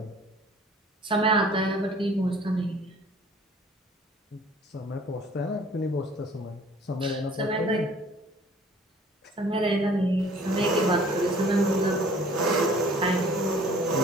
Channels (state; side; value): normal; both; correlation 0.53